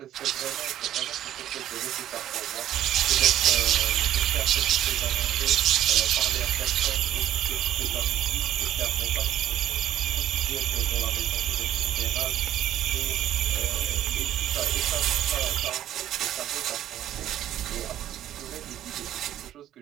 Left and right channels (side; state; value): left; quieter; 12.0 dB